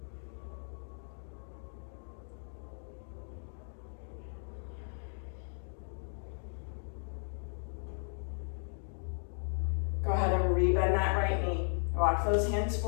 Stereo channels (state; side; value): silent; right; digital silence